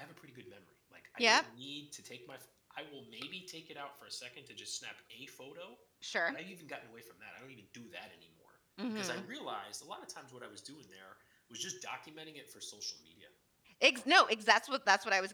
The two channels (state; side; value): identical; both; correlation 1.00